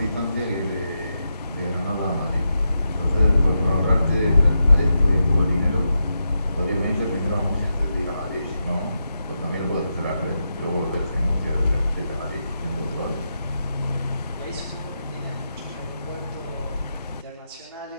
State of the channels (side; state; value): both; inverted; correlation -0.86